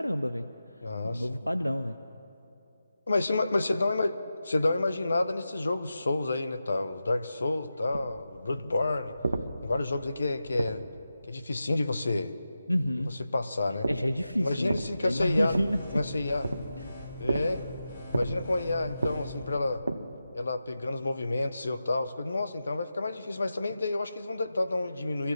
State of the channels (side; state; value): both; inverted; correlation -0.91